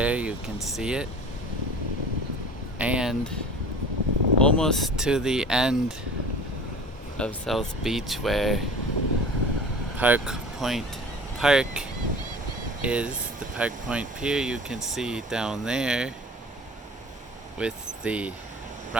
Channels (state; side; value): normal; both; correlation 0.41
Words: you can see it. And almost to the end of South Beach where Park Point Park is, the Park Point Pier you can see down there with the